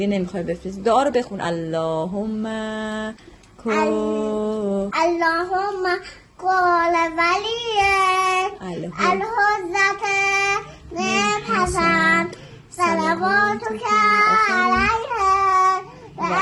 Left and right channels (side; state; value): both; identical; correlation 1.00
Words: نمیخوای بفرستی. دعا رو بخون. اللهم قال ولی الحضرت حسن صلواتک علیه و